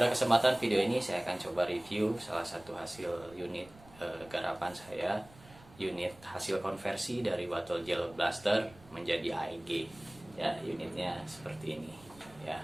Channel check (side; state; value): right; noise; rumble, 23 dB below the sound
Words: kesempatan video ini saya akan coba review salah satu hasil unit garapan saya, unit hasil konversi dari bottle gel blaster menjadi AEG. Ya, unitnya seperti ini ya.